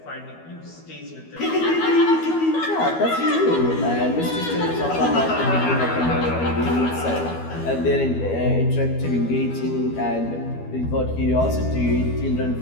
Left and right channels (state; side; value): late; right; 12 ms